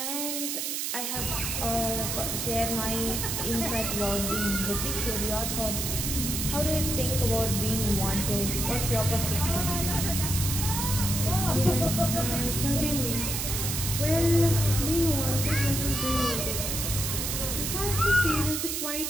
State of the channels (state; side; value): noise; right; hiss, 2 dB below the sound